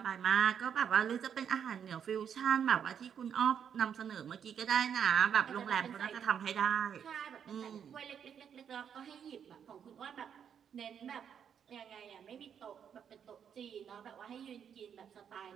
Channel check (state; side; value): quieter; left; 8.1 dB